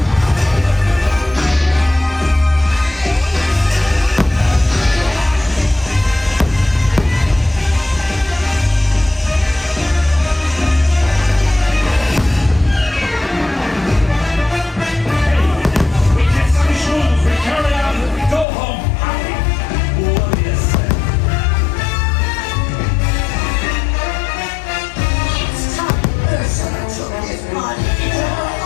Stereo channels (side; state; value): right; drops out; at 18.4 s